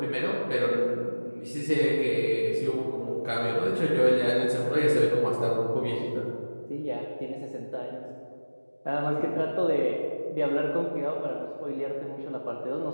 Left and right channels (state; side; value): inverted; both; correlation -1.00